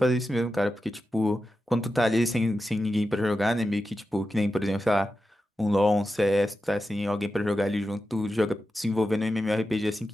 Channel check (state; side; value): normal; both; correlation 0.91